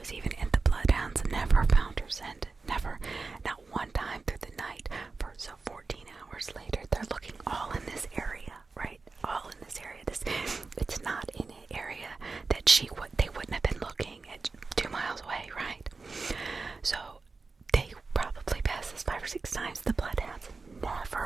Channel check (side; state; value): left; quieter; 4.1 dB